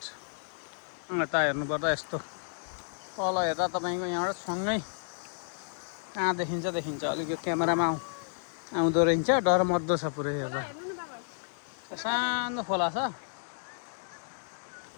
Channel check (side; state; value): right; silent; digital silence